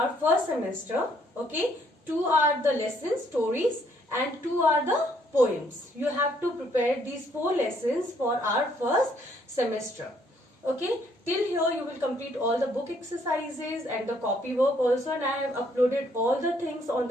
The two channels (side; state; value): both; normal; correlation 0.67